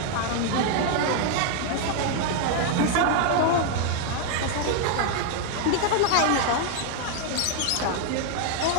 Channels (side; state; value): both; different; correlation 0.00